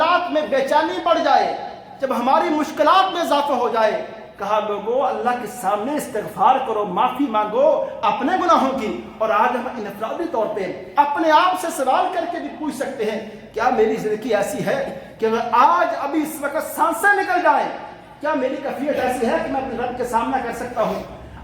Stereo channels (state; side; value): identical; both; correlation 1.00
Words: میں بے چینی بڑھ جائے، جب ہماری مشکلات میں اضافہ ہو جائے، کہا لوگوں اللہ کے سامنے استغفار کرو، معافی مانگو اپنے گناہوں کی. اور آج ہم انفرادی طور پہ اپنے آپ سے سوال کر کے بھی پوچھ سکتے ہیں، کیا میری زندگی ایسی ہے کہ اگر آج ابھی اس وقت سانسیں نکل جائیں، کیا میری کیفیت ایسی ہے کہ میں اپنے رب کے سامنا کر سکتا ہوں؟